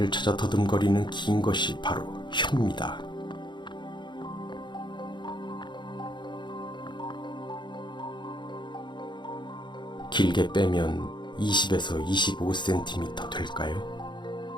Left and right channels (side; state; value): right; late; 0.22 ms